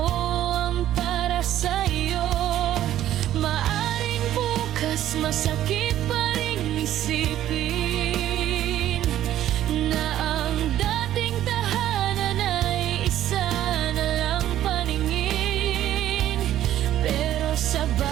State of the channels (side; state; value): left; quieter; 12.5 dB